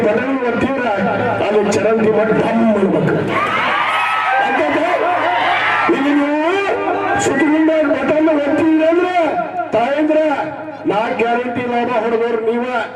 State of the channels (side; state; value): both; identical; correlation 1.00